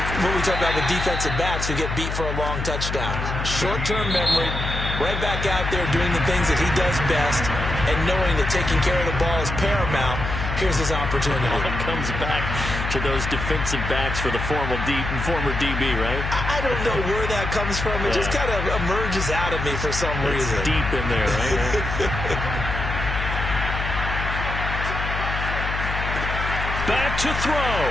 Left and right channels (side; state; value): left; noise; hum, 4 dB below the sound